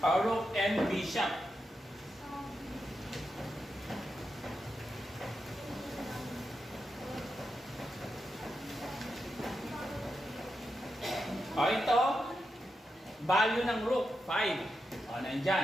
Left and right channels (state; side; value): normal; both; correlation 0.87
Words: Rook and bishop. Ito, value ng rook, 5.